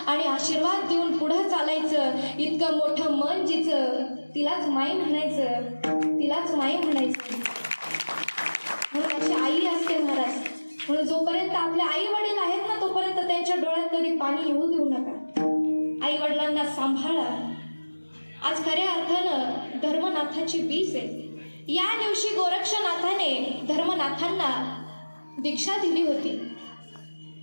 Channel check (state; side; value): inverted; both; correlation -1.00